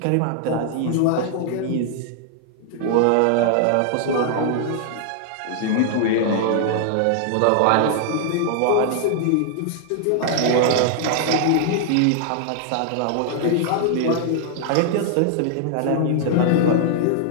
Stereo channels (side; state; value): both; different; correlation -0.01